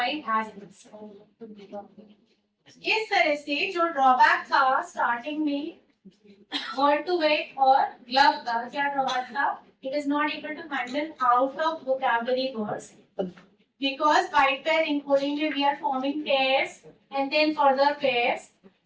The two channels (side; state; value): both; identical; correlation 1.00